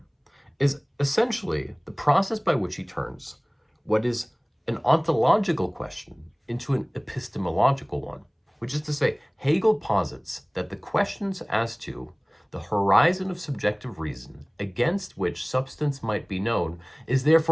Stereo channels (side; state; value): both; identical; correlation 1.00